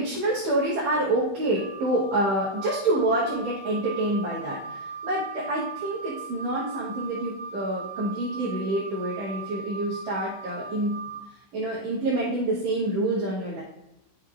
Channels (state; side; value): late; left; 15 ms